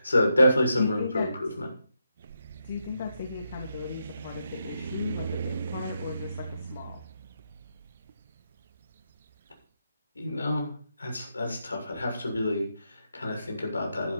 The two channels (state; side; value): inverted; both; correlation -0.83